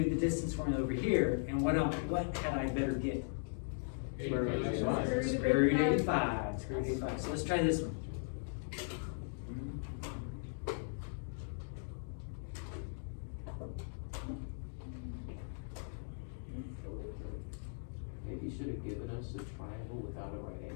the distance formula over here, and what had I better get? Square root of 85. Square root of 85. Square root of 85. So let's try this one. Maybe you should have given us a triangle without a right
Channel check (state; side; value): silent; right; digital silence